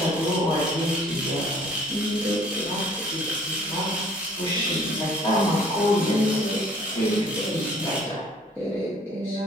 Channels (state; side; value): normal; both; correlation 0.56